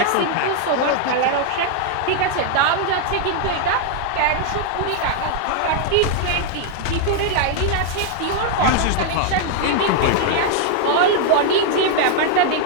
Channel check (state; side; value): different; both; correlation 0.00